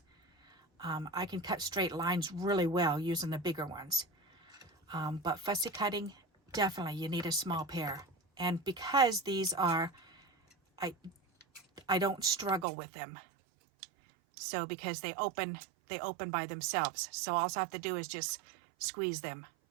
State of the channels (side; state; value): left; drops out; at 12.7 s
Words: I can cut straight lines really well using the bigger ones. But fussy cutting, definitely you need a small pair. And because these are, I don't struggle with them. So because they open by themselves. So all I have to do is just squeeze them